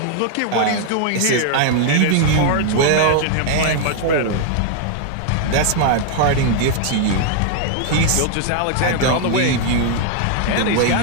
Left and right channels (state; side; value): different; both; correlation 0.00